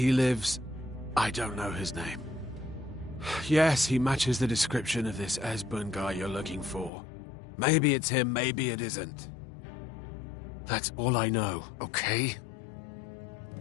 lives. I don't know his name. Yes, he matches the description of this Esbern guy you're looking for. Maybe it's him, maybe it isn't. That's all I know, okay?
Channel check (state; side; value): drops out; right; at 6.9 s